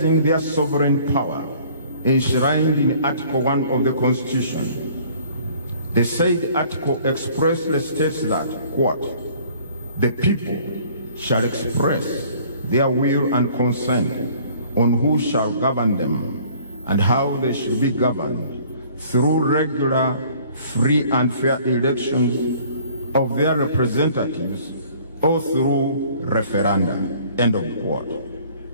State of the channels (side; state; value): both; inverted; correlation -0.54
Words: their sovereign power enshrined in Article 1 of the Constitution. The said article expressly states that, quote, "The people shall express their will and consent on who shall govern them and how they should be governed through regular, free and fair elections of their representatives or through referenda," end of quote.